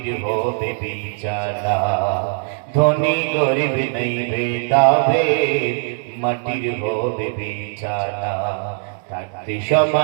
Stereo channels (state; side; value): silent; left; 55 dB below the other